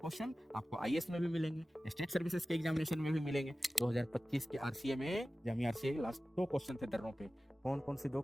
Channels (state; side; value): normal; both; correlation 0.96